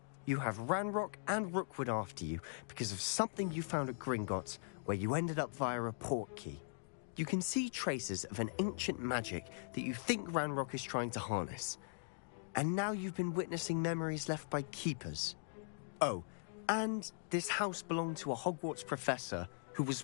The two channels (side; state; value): right; silent; digital silence